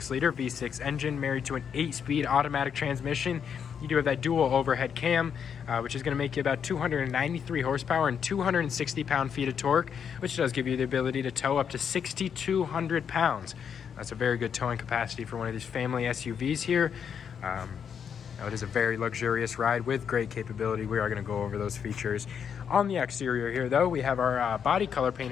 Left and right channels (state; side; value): quieter; right; 7.5 dB